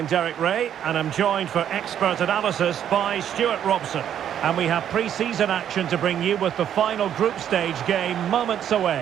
Derek Ray, and I'm joined for expert analysis by Stuart Robson. And we have pre-season action to bring you with the final group stage game moments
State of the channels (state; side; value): quieter; left; 9.8 dB